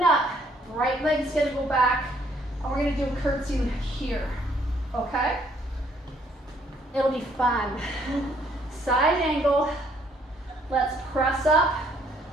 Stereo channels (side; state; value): both; normal; correlation 0.65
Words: up. Right leg's gonna go back, and we're gonna do a curtsy here, okay? It'll be fun. Side angle, let's press up,